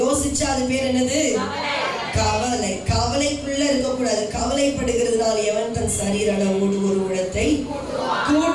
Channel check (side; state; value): both; identical; correlation 1.00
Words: அது பேர் என்னது? கவலை. கவலைக்குள்ள இருக்கக்கூடாது. கவலைப்படுகிறதுனால எவன் தன் சரீர அளவோடு ஒரு முழத்தை